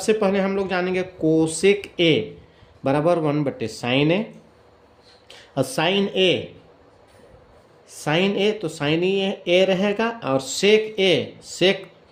पहले हम लोग जानेंगे कोसेक ए बराबर 1/साइन ए। और साइन ए तो साइन ए रहेगा और सेक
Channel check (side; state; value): both; identical; correlation 1.00